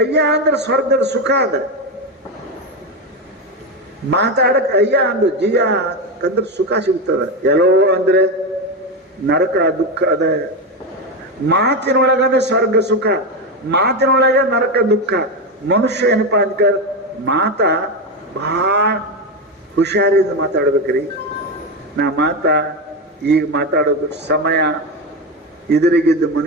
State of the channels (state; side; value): normal; both; correlation 0.13